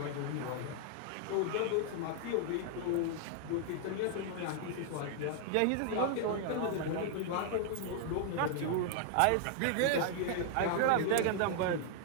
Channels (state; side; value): different; both; correlation 0.00